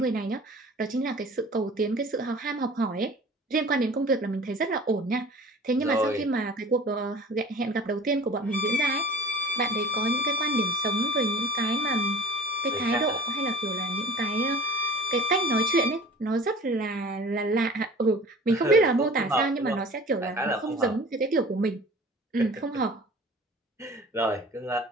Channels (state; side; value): normal; both; correlation 0.43